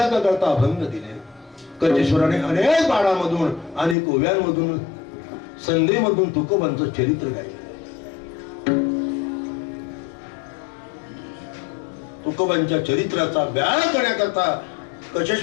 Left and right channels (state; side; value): drops out; right; at 4.0 s